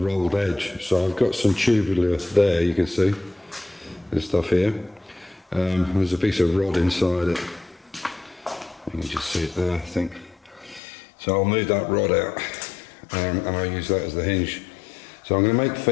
edge. So I've got some tubular there, you can see this stuff here. There's a piece of rod inside it. You can just see it there, I think. So I'll move that rod out, and I'll use that as the hinge. So I'm going to make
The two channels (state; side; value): drops out; right; at 10.8 s